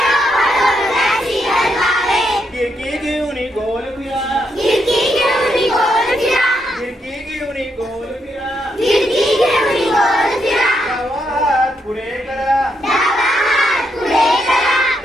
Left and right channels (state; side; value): normal; both; correlation 0.79